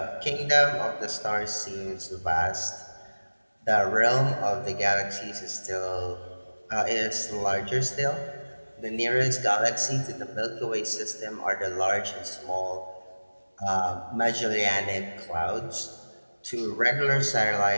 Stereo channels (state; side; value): inverted; both; correlation -1.00